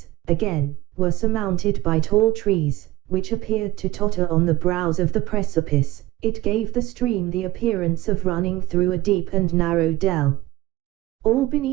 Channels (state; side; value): quieter; left; 16.7 dB